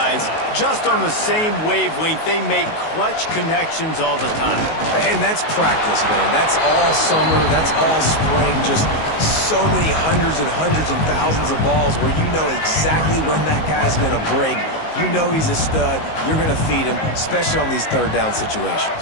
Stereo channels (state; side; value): late; right; 19 ms